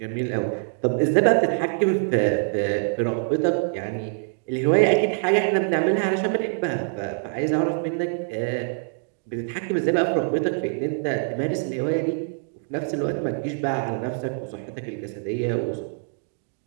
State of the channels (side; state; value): left; silent; digital silence